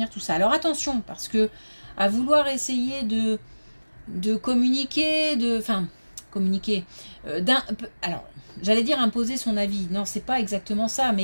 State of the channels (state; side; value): inverted; both; correlation -1.00